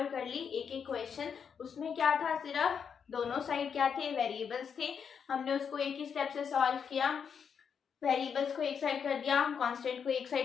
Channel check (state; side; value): quieter; right; 6.9 dB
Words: कर ली, एक एक क्वेश्चन। उसमें क्या था, सिर्फ दोनों साइड क्या थे, वेरिएबल्स थे। हमने उसको एक ही स्टेप से सॉल्व किया, वेरिएबल्स को एक साइड कर दिया, कांस्टेंट को एक